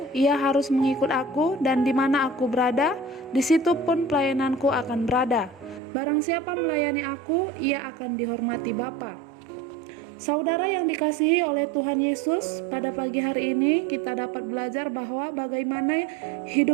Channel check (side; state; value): left; drops out; at 5.8 s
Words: ia harus mengikut aku, dan di mana aku berada, di situ pun pelayananku akan berada. Barang siapa melayani aku, ia akan dihormati Bapa. Saudara yang dikasihi oleh Tuhan Yesus, pada pagi hari ini kita dapat belajar bahwa bagaimana